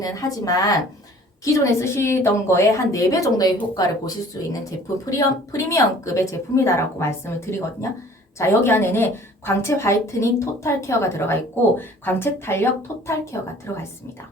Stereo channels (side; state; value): both; normal; correlation 0.51